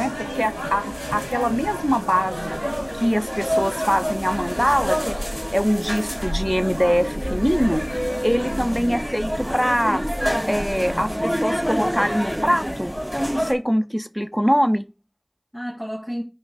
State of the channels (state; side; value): identical; both; correlation 1.00